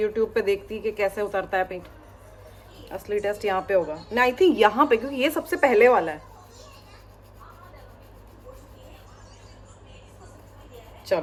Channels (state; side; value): identical; both; correlation 1.00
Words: पे देखती कि कैसे उतरता है पेंट। असली टेस्ट यहाँ पे होगा ना, आई थिंक यहाँ पे, क्योंकि ये सबसे पहले वाला है।